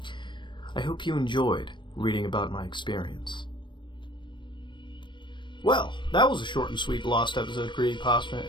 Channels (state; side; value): late; right; 0.23 ms